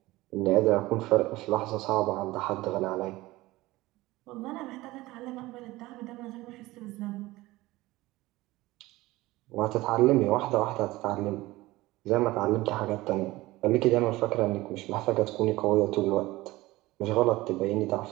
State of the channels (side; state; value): left; quieter; 19.0 dB